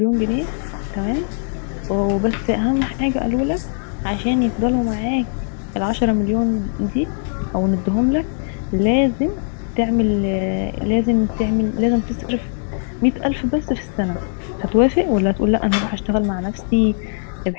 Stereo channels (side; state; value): right; silent; digital silence